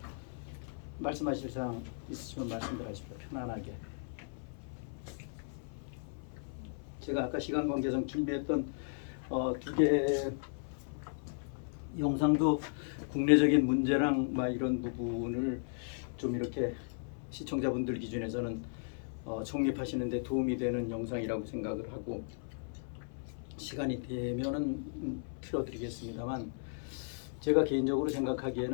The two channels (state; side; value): silent; right; 54 dB below the other